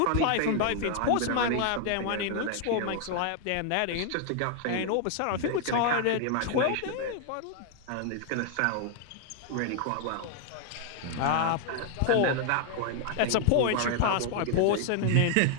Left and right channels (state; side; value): different; both; correlation 0.00